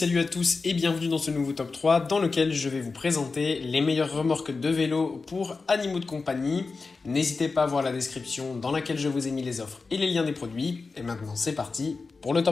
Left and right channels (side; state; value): right; quieter; 4.2 dB